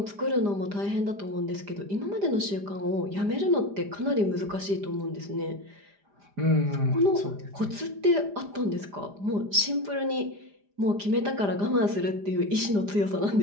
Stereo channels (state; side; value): late; left; 4.9 ms